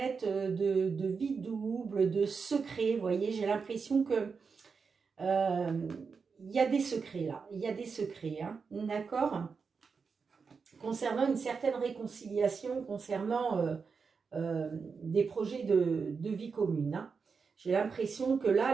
de vie double, de secrets. Vous voyez, j'ai l'impression que il y a des secrets là, il y a des secrets, hein, d'accord? Concernant une certaine réconciliation, concernant des projets de vie commune. Hein. J'ai l'impression que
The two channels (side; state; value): left; quieter; 5.3 dB